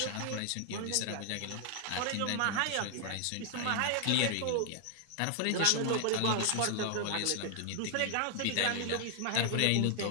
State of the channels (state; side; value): different; both; correlation 0.00